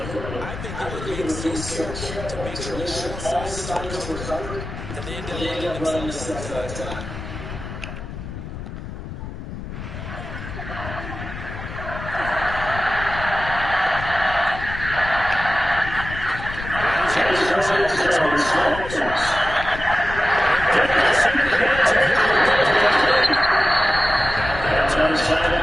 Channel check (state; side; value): noise; left; rumble, 9 dB below the sound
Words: I think they were being so careful to make sure all assignments were covered, and they ended up letting themselves down that time.